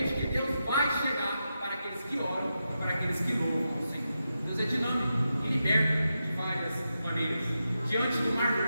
que Deus vai chegar para aqueles que oram, para aqueles que louvam o Senhor. Deus é dinâmico e liberta de várias maneiras. Diante do Mar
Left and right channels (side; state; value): both; inverted; correlation -0.88